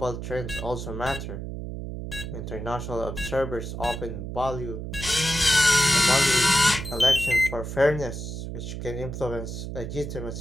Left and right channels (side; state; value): right; noise; hum, 7 dB below the sound